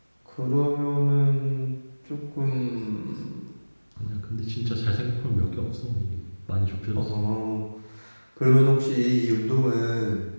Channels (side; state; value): both; inverted; correlation -1.00